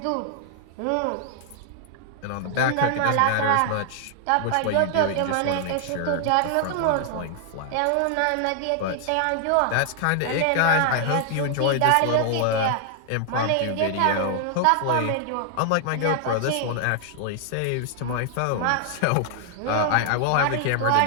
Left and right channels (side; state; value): both; different; correlation 0.00